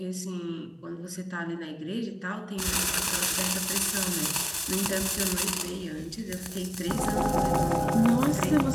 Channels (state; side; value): identical; both; correlation 1.00